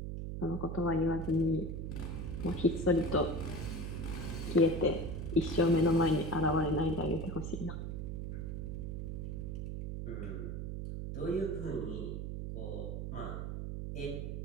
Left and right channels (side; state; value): right; noise; hum, 4 dB below the sound